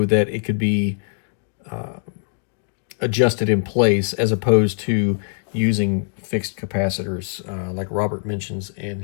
that it could be adjusted in place, as opposed to using fixed capacitors like Robert mentions in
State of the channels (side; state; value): right; silent; digital silence